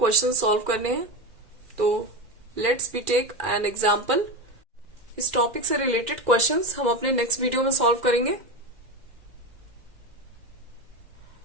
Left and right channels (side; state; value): left; late; 2.0 ms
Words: सॉल्व करने हैं, तो let's be take an example. इस टॉपिक से रिलेटेड क्वेश्चंस हम अपने नेक्स्ट वीडियो में सॉल्व करेंगे।